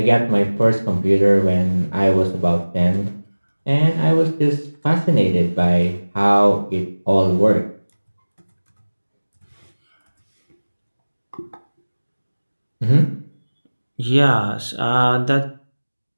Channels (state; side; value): inverted; both; correlation -1.00